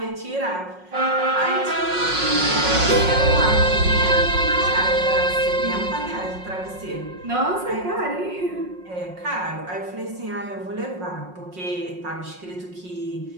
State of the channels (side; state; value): left; late; 5.5 ms